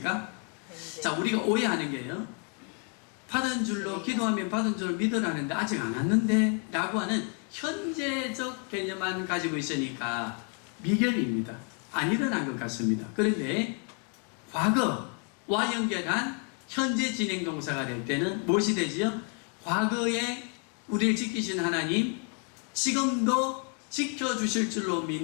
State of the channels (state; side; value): quieter; right; 39.1 dB